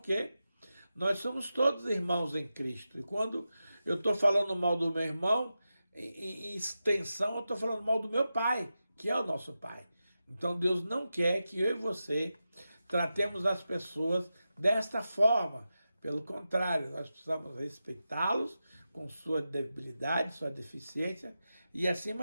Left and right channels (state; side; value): inverted; both; correlation -0.91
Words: quê? Nós somos todos irmãos em Cristo. E quando eu estou falando mal do meu irmão, em extensão, eu estou falando mal do meu Pai, que é o nosso Pai. Então Deus não quer que eu e você tratemos as pessoas desta forma. Pelo contrário, nós precisamos respeitá-los com sua debilidade, sua deficiência e,